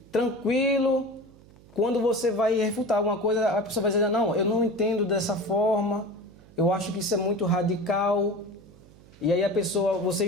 tranquilo. Quando você vai refutar alguma coisa, a pessoa vai dizer, não, eu não entendo dessa forma, eu acho que isso é muito radical. E aí a pessoa,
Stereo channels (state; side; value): noise; right; hum, 24 dB below the sound